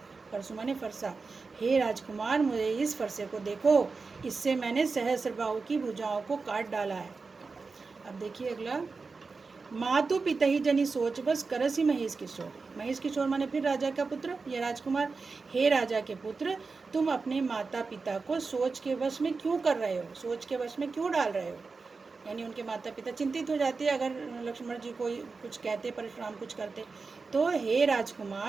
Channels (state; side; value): quieter; left; 4.4 dB